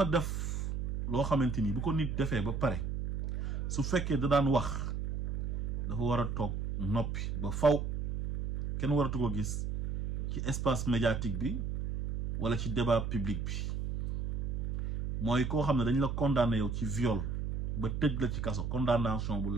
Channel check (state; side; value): noise; right; hum, 1 dB below the sound